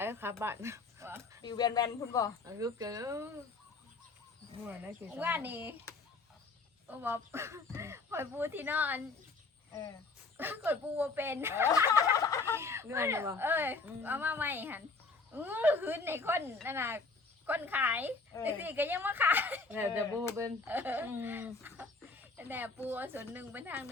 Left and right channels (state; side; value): quieter; right; 3.9 dB